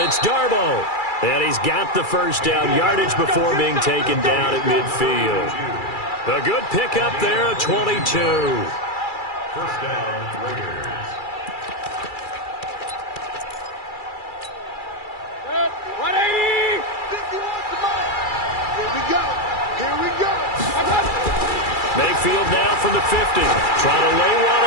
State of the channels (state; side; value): late; right; 2.3 ms